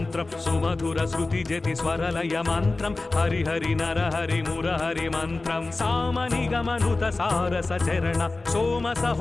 సుమధుర శృతి జతి స్వరలయ మంత్రం హరిహరి నరహరి మురహరి మంత్రం సామనిగమనుత సారస చరణ సోమ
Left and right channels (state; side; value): quieter; right; 3.3 dB